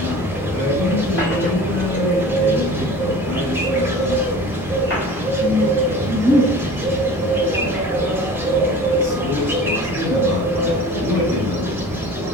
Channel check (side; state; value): both; normal; correlation 0.41